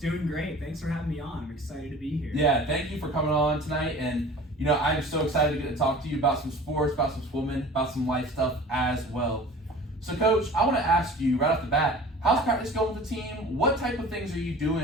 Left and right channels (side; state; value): both; normal; correlation 0.42